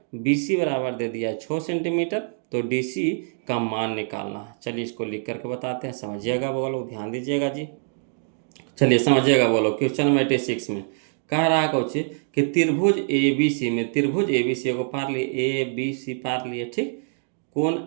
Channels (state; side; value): silent; left; digital silence